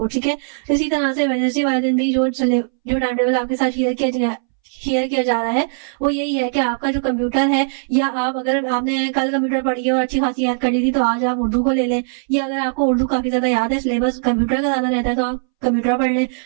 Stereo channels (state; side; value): silent; left; 64 dB below the other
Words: ठीक है। इसी तरह से वेडनेसडे वाले दिन भी जो टाइम टेबल आपके साथ शेयर किया जा रहा है वो यही है कि आपका जो कंप्यूटर है, या आप अगर आपने कल कंप्यूटर पढ़ी है और अच्छी खासी याद कर ली थी तो आज आप उर्दू को ले लें, या अगर आपको उर्दू काफी ज्यादा याद है, सिलेबस कंप्यूटर का ज्यादा रहता है तो आप कंप्यूटर पढ़ लें,